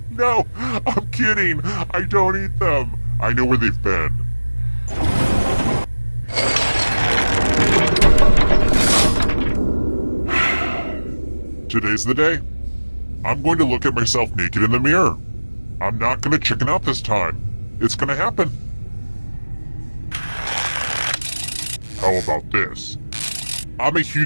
No, I'm kidding. I don't eat them. I know where they've been. Today's the day. I'm going to look at myself naked in the mirror. I'm not gonna chicken out this time. It's gonna happen. How about this? I'm a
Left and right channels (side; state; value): both; inverted; correlation -1.00